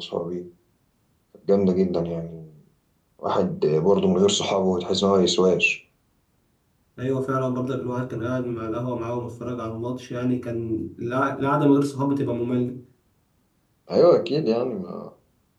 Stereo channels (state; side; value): identical; both; correlation 1.00